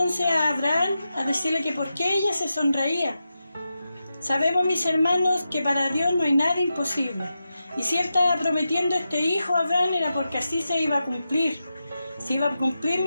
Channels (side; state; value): both; inverted; correlation -0.89